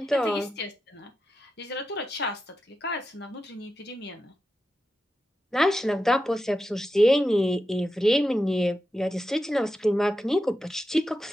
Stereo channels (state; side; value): normal; both; correlation 0.90